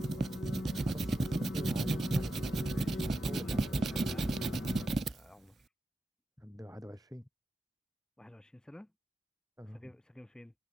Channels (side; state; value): both; normal; correlation 0.88